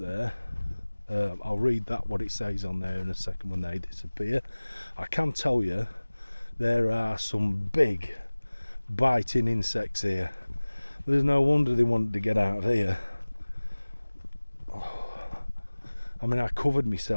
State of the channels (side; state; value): both; inverted; correlation -1.00